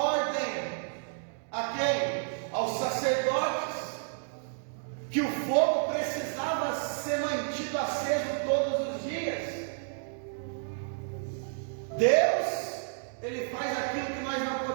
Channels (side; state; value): left; silent; digital silence